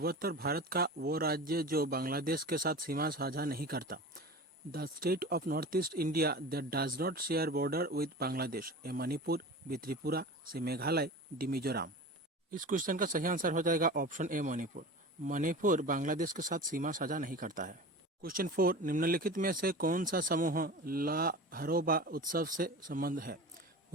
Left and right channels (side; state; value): both; normal; correlation 0.33